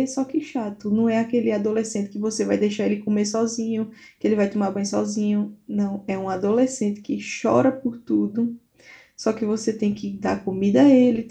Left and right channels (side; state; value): both; identical; correlation 1.00